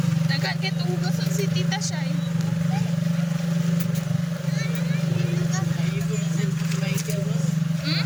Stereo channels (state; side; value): identical; both; correlation 1.00